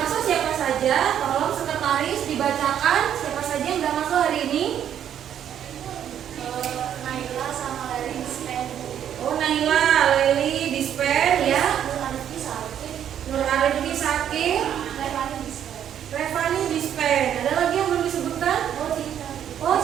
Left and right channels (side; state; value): left; quieter; 9.7 dB